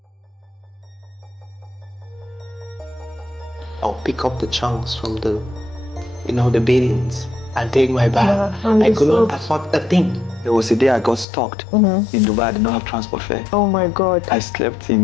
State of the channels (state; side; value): drops out; right; at 11.2 s